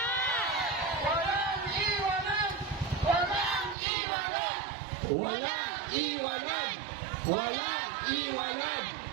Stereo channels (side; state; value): left; drops out; at 3.8 s